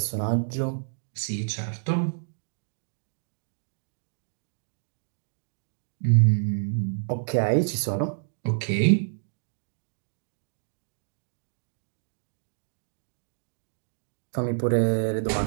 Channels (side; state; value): left; silent; digital silence